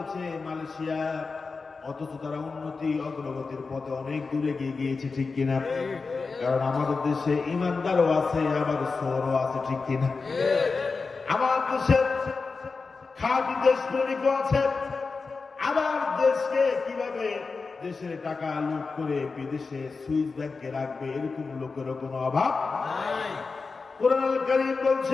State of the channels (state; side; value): quieter; right; 4.4 dB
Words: মালয়েশিয়া, অথচ তারা উন্নতি অগ্রগতির পথে অনেক দূরে গিয়ে গিয়েছে, ঠিক কিনা? কারণ আমাদের দেশে ইমানদারও আছে, আবার চোরও আছে, ঠিক কিনা? আমার দেশের খাঁটি দেশপ্রেমিকও আছে, আবার দেশের টাকা লুট করে বিদেশে সুইস ব্যাংকে রাখবে, এরকম লোকেরও কোনো অভাব নাই। কোরআন আল কারীম